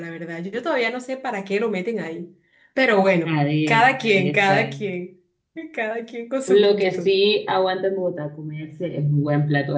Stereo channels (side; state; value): both; identical; correlation 1.00